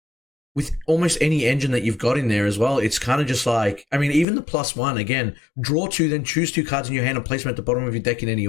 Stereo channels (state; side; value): drops out; right; at 4.2 s